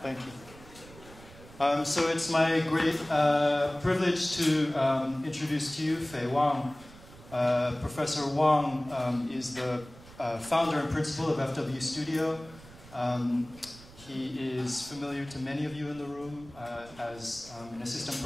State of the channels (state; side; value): noise; right; rumble, 20 dB below the sound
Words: Thank you. So it's my great privilege to introduce to you Fei Wang. Professor Wang is the founder and principal of FWStudio. He is familiar to many of you in the room as an assistant